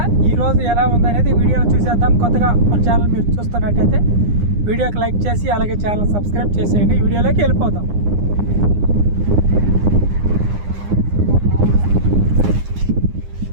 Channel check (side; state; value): left; late; 9.8 ms